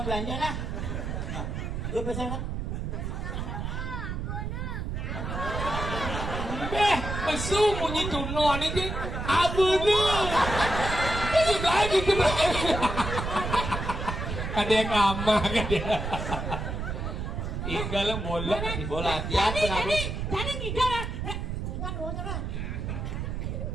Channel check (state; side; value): noise; right; rumble, 4 dB below the sound